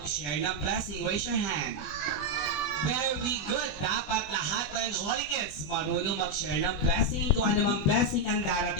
ng blessing? Raise your hand. Very good. Dapat lahat ng Holy Kids marunong mag-share ng blessing kung ano mang blessing ang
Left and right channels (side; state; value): right; late; 21 ms